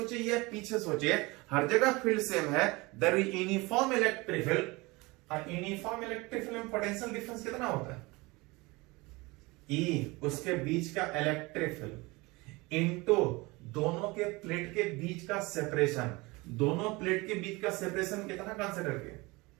या पीछे सोचिए, हर जगह फील्ड सेम है, there is uniform electric field. और यूनिफॉर्म इलेक्ट्रिक फील्ड में पोटेंशियल डिफरेंस कितना होता है, ई उसके बीच का इलेक्ट्रिक फील्ड इनटू दोनों के प्लेट के बीच का सेपरेशन। दोनों प्लेट के बीच का सेपरेशन कितना कंसीडर किया।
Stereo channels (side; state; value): left; quieter; 23.8 dB